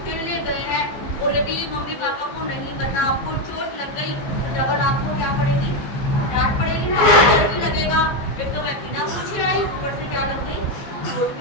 खेलने गए हैं, और यदि मम्मी पापा को नहीं पता, आपको चोट लग गई तो डबल आपको क्या पड़ेगी, डांट पड़ेगी ना, डर भी लगेगा। एक तो मैं बिना पूछे आई, ऊपर से क्या लग गई, चोट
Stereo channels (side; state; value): right; late; 15 ms